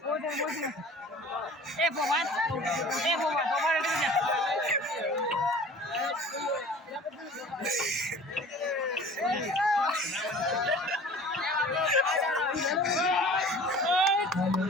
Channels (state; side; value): normal; both; correlation 0.44